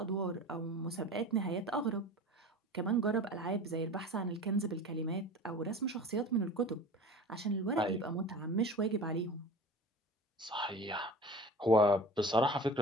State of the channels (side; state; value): both; normal; correlation 0.37